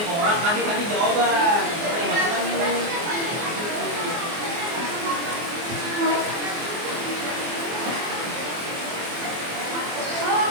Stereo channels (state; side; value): late; left; 24 ms